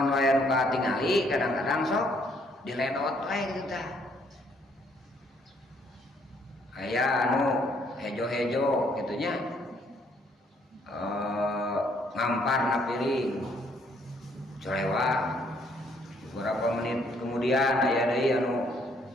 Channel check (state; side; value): normal; both; correlation 0.67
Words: wae nu katingali kadang-kadang sok diledot wae gitu tah. Aya anu hejo-hejo gitunya ngamparna piring colewak beberapa menit kemudian aya deui anu